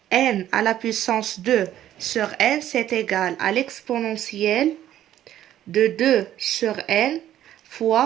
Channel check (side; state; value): left; quieter; 12.1 dB